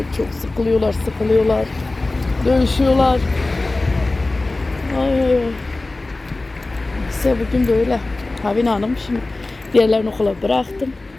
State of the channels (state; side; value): quieter; right; 3.1 dB